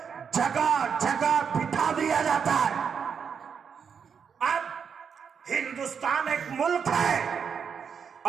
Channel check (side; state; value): left; quieter; 6.8 dB